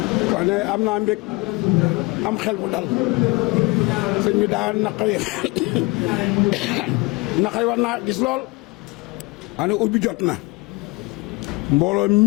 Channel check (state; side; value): quieter; right; 25.3 dB